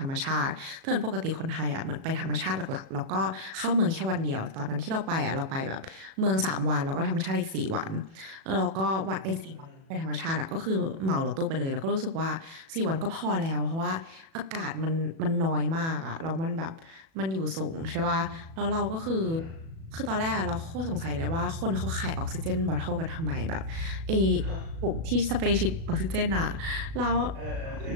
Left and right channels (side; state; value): left; late; 37 ms